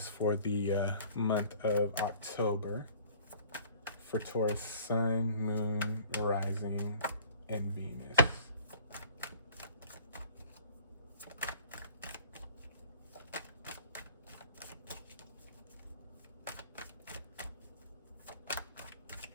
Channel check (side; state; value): both; inverted; correlation -0.49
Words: for the month of October? For Taurus, Sun, Moon, Rising, and Venus.